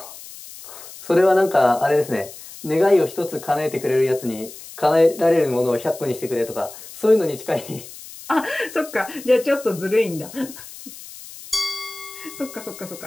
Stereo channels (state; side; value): noise; left; hiss, 16 dB below the sound